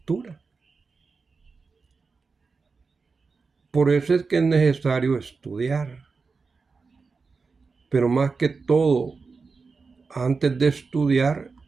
Por eso es que es necesario estudiar. Pero más que todo, antes de estudiar,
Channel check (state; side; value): quieter; left; 4.6 dB